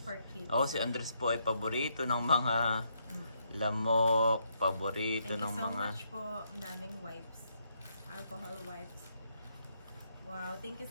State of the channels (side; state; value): both; inverted; correlation -0.76